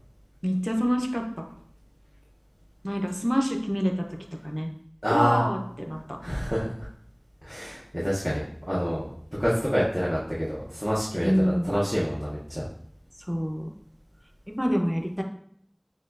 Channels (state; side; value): identical; both; correlation 1.00